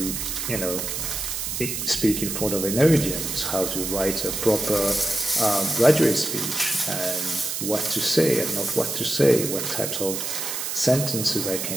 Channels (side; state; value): right; noise; hiss, 3 dB below the sound